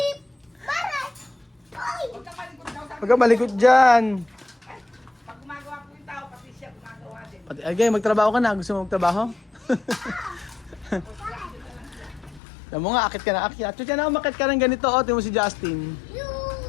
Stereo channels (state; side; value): drops out; right; at 12.4 s